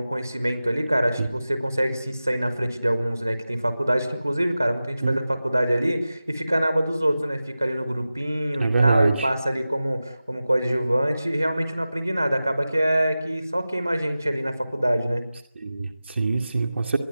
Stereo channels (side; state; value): both; inverted; correlation -0.94